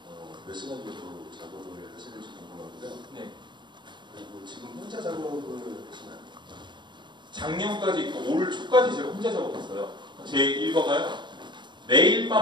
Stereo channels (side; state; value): left; late; 0.22 ms